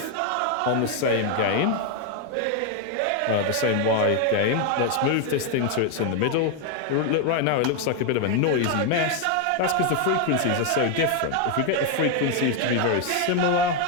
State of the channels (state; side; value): different; both; correlation 0.01